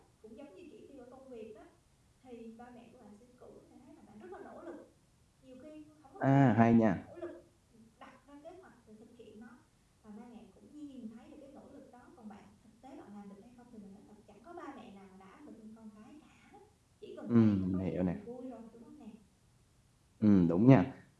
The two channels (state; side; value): identical; both; correlation 1.00